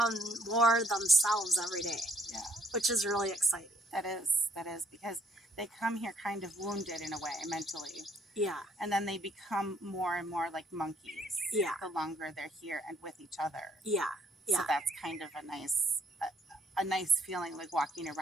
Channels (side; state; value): both; normal; correlation 0.65